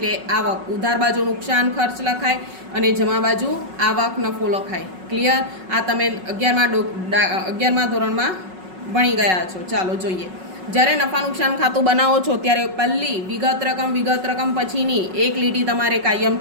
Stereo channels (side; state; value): left; late; 5.4 ms